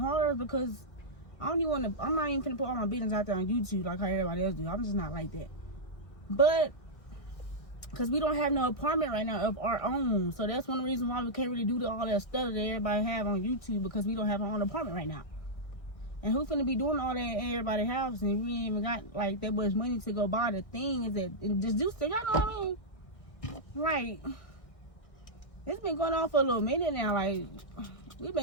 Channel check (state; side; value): late; right; 1.6 ms